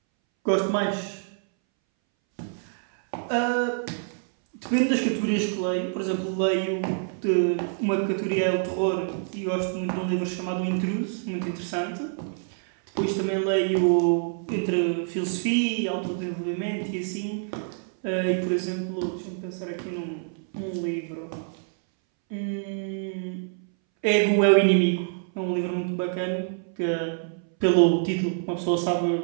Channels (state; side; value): silent; left; 61 dB below the other